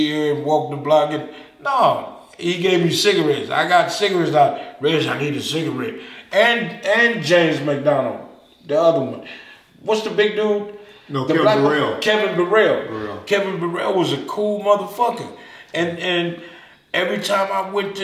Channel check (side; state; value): both; identical; correlation 1.00